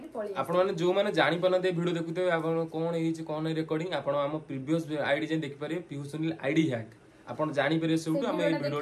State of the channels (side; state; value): both; identical; correlation 1.00